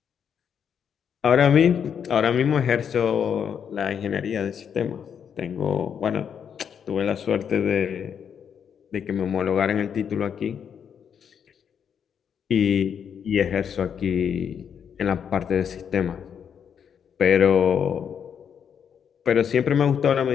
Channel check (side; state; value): right; quieter; 7.8 dB